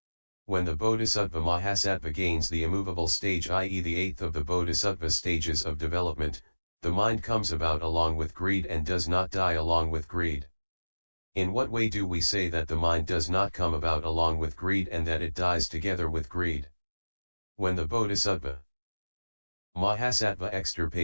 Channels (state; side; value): inverted; both; correlation -1.00